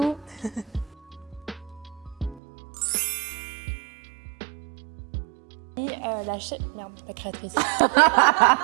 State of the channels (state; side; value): drops out; left; at 2.4 s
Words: Et la créatrice.